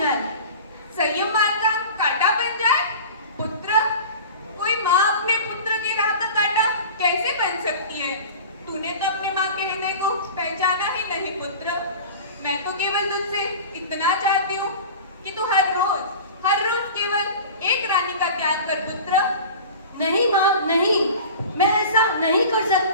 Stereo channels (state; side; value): inverted; both; correlation -0.37